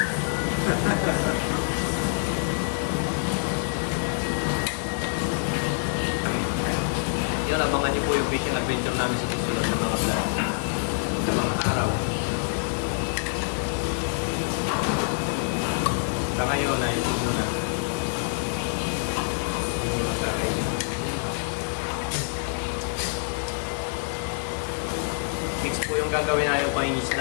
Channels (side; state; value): right; silent; digital silence